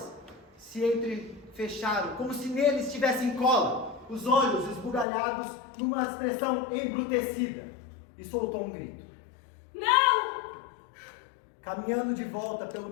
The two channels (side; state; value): right; drops out; at 5.1 s